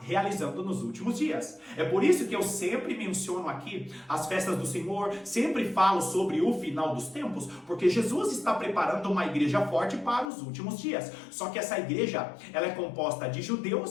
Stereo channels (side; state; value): right; drops out; at 10.3 s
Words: realizando nos últimos dias. É por isso que eu sempre menciono aqui as festas do Senhor, sempre falo sobre o final dos tempos, porque Jesus está preparando uma igreja forte para os últimos dias. Só que essa igreja, ela é composta de